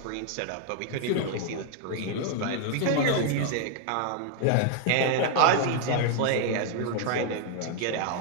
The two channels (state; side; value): different; both; correlation 0.00